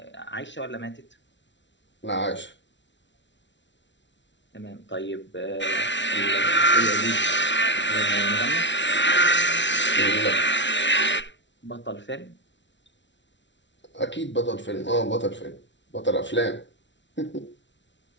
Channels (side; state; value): right; late; 0.53 ms